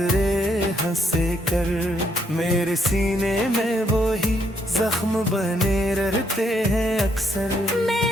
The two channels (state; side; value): normal; both; correlation 0.73